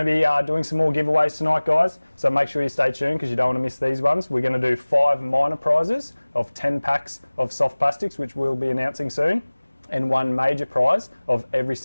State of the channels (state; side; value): inverted; both; correlation -1.00